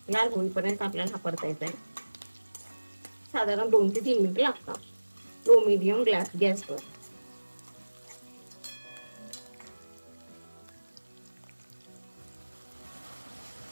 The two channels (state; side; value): inverted; both; correlation -1.00